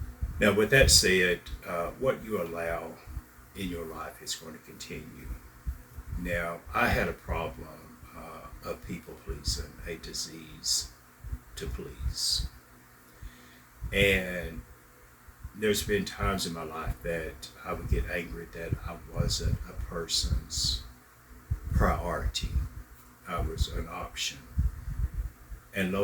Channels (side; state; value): both; identical; correlation 1.00